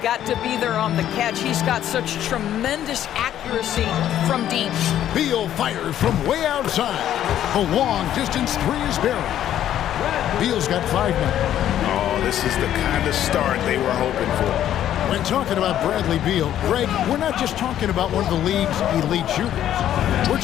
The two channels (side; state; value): right; quieter; 11.3 dB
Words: to be there on the catch. He's got such tremendous accuracy from deep. Beal fires from way outside. The long-distance three is buried. Beal's got 5 now. Oh, this is the kind of start they were hoping for. When talking about Bradley Beal, Greg, we're not just talking about one of the league's elite shooters. We're